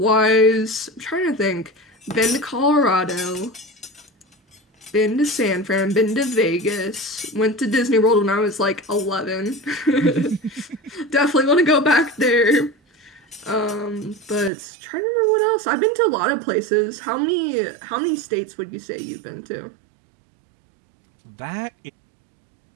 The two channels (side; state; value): left; drops out; at 14.5 s